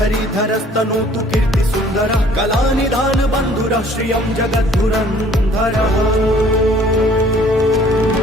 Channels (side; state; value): both; normal; correlation 0.56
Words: कीर्ति सुन्दरः कलानिधान बन्धुरः श्रियं जगद्धुरन्धरः